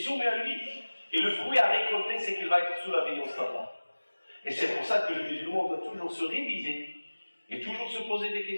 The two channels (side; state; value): both; inverted; correlation -1.00